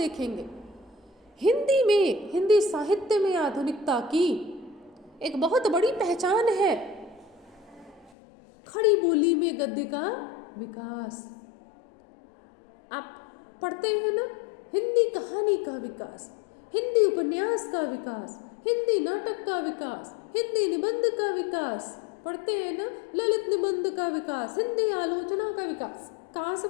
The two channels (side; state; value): right; drops out; at 8.1 s